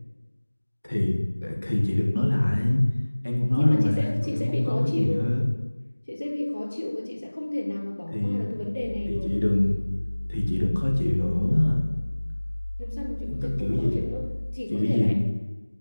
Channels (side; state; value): both; inverted; correlation -1.00